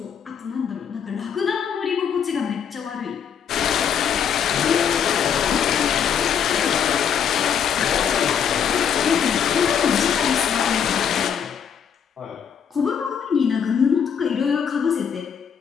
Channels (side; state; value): right; quieter; 7.8 dB